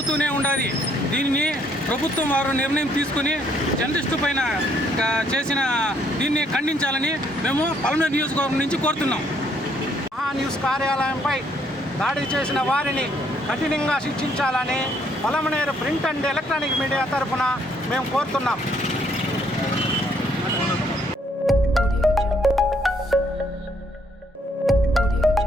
ఉండాలి. దీన్ని ప్రభుత్వం వారు నిర్ణయం తీసుకుని జర్నలిస్టు పైన చేసిన దీన్ని ఖండించాలని మేము పలమనేరు నియోజకవర్గం నుంచి కోరుతున్నాం. మహాన్యూస్ కార్యాలయంపై దాడి చేసిన వారిని కఠినంగా శిక్షించాలని Palamaner print and electronic media తరఫున మేము కోరుతున్నాం.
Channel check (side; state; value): both; normal; correlation 0.68